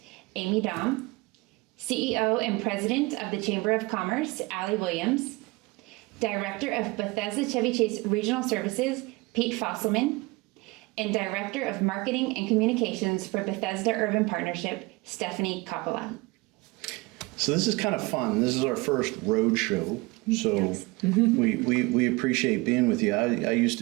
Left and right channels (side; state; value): left; quieter; 23.7 dB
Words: Amy Daum, CEO and President of the Chamber of Commerce, Allie Williams, Director of Bethesda Chevy Chase Regional Services, Pete Fosselman, and Director of Marketing and Communications for Bethesda Urban Partnership, Stephanie Coppola. So this is kind of fun. This is our first road show. So Yes. we appreciate being with you. I used